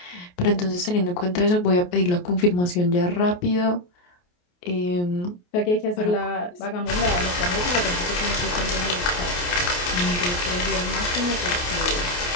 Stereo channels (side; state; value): right; late; 28 ms